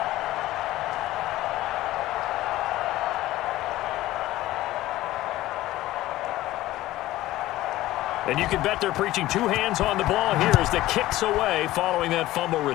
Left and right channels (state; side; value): quieter; right; 16.1 dB